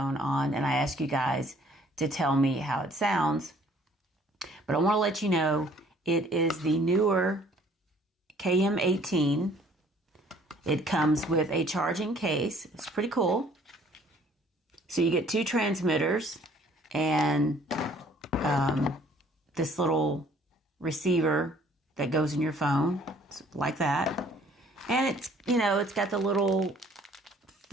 on, and I ask you guys to tell me how it sounds. But I want to let you know it is the newer KM18. It comes with a charging case. It's pretty cool. So you get two transmitters and this little receiver that goes in your phone, like that. And it's, it's got the little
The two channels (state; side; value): normal; both; correlation 0.58